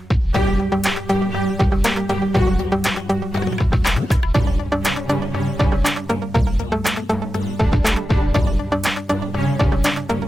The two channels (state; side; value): normal; both; correlation 0.91